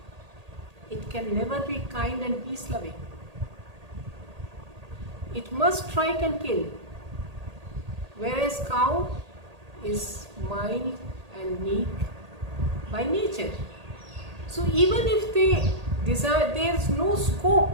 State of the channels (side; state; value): left; late; 1.8 ms